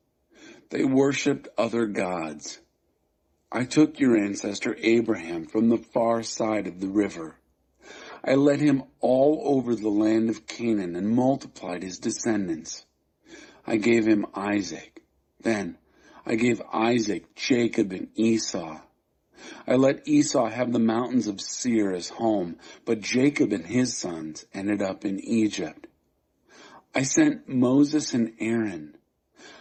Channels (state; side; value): identical; both; correlation 1.00